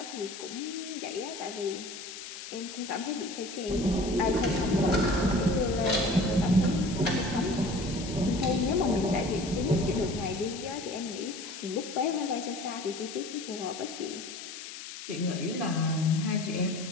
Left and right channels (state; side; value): noise; left; hiss, 11 dB below the sound